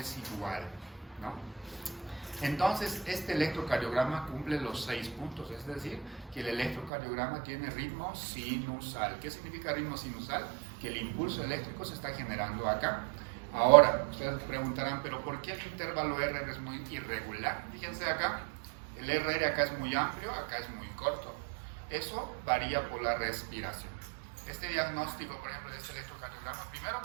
igual, ¿no? Entonces este electrocardiograma cumple los 6 puntos, es decir, que el electrocardiograma tiene ritmo sinusal. ¿Qué significa ritmo sinusal? Que el impulso eléctrico se está generando acá. Ahora, ustedes preguntarán, ¿pero por qué el intervalo R es muy irregular? Fíjense acá. El RR acá es muy amplio, acá es muy corto. Eso varía por la respiración. Este diagnóstico, por ejemplo, de este electrocardiograma, primero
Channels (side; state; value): left; drops out; at 6.9 s